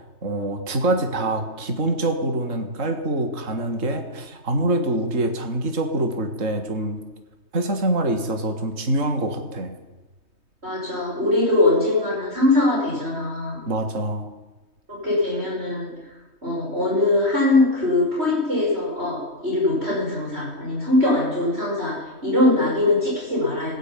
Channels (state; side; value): late; left; 3.2 ms